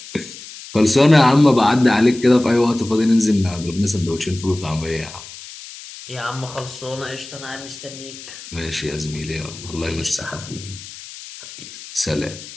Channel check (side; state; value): left; noise; hiss, 15 dB below the sound